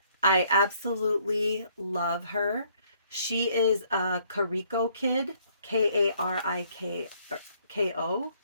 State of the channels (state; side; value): inverted; both; correlation -0.64